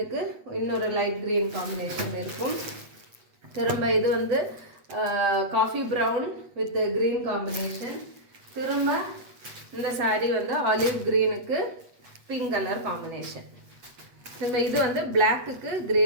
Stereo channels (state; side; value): late; left; 8.2 ms